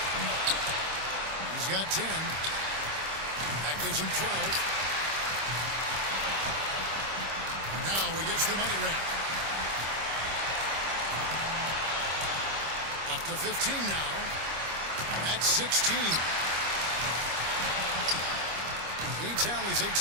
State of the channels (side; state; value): left; late; 25 ms